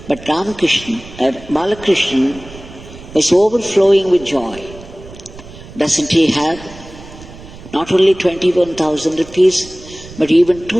but Balakrishna was overflowing with joy. Doesn't he have not only 21,000 rupees, but even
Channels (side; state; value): right; noise; rumble, 17 dB below the sound